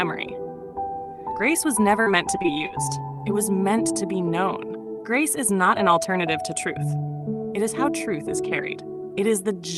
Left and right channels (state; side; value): identical; both; correlation 1.00